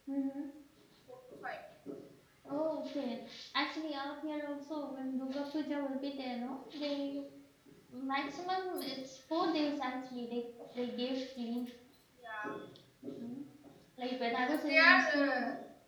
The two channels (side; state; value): both; identical; correlation 1.00